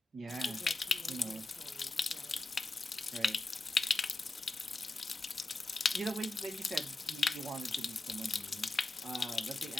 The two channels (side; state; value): right; quieter; 3.0 dB